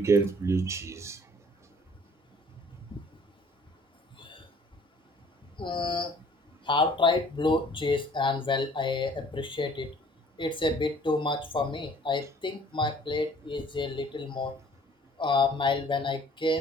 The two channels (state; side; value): normal; both; correlation 0.55